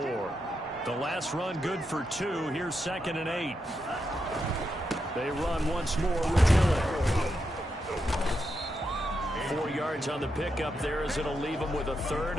The last run good for 2. Here's 2nd and 8. They run once more with Dillon. 4 yards on the pickup there as it'll leave them with a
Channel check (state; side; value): normal; both; correlation 0.84